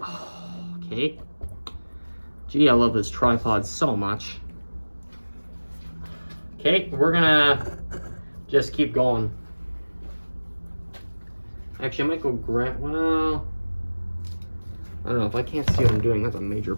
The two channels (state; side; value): inverted; both; correlation -1.00